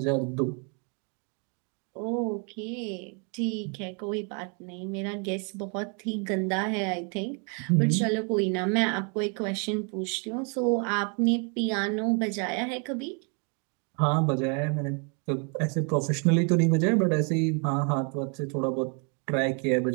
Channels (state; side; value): quieter; left; 37.6 dB